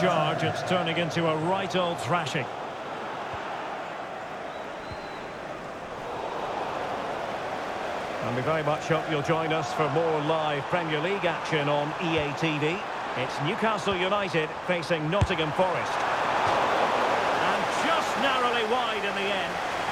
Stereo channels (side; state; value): both; identical; correlation 1.00